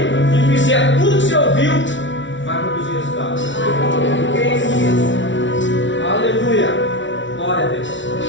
e fizer tudo que você ouviu, vai produzir resultado. Aleluia. Glória a Deus.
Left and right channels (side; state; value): right; late; 0.55 ms